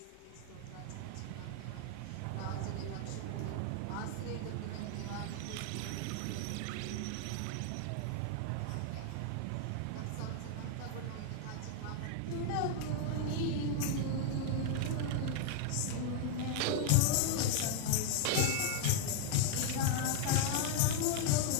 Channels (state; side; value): different; both; correlation 0.00